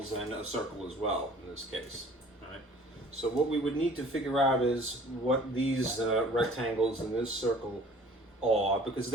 and a circle as well in this case. All right. So what we would need to figure out is what these rectangles in this circle are, because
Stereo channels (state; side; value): normal; both; correlation 0.50